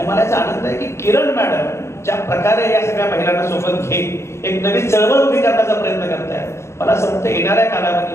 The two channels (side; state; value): right; late; 0.13 ms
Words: मला याचा आनंद आहे की किरण मॅडम ज्या प्रकारे या सगळ्या महिलांना सोबत घेत एक नवीन चळवळ उभी करण्याचा प्रयत्न करतायत. मला असं वाटतं येणाऱ्या